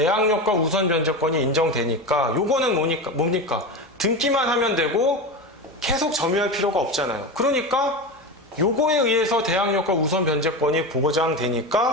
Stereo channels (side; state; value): both; normal; correlation 0.22